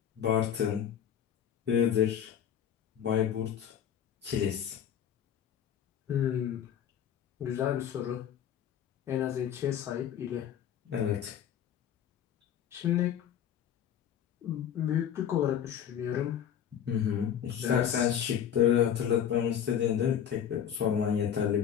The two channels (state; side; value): quieter; right; 9.3 dB